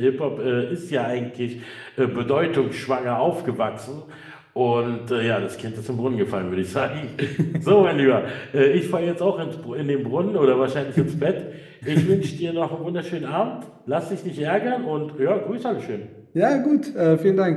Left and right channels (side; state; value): both; identical; correlation 1.00